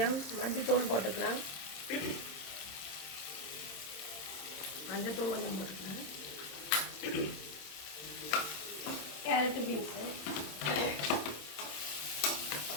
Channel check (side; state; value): right; late; 27 ms